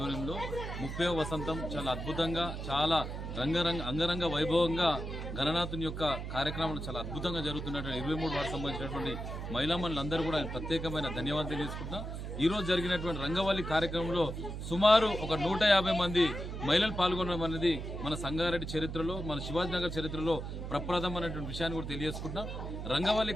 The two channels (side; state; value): right; noise; hum, 6 dB below the sound